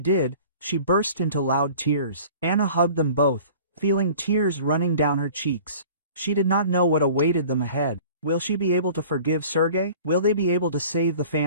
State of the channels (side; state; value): both; inverted; correlation -0.46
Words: she burst into loud tears. Anna hugged them both, feeling tears running down her cheeks. She did not know what awaited them ahead. Will she be able to forgive Sergei? Will they be able to save the